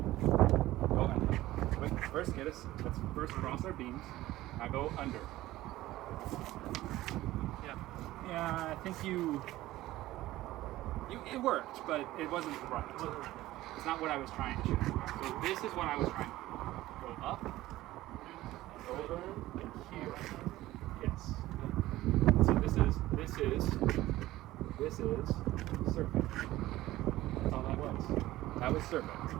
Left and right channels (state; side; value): quieter; left; 16.3 dB